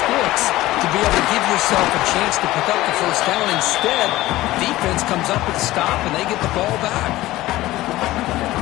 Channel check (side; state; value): right; quieter; 17.0 dB